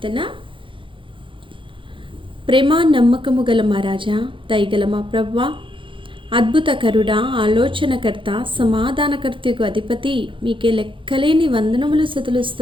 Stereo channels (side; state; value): left; late; 0.25 ms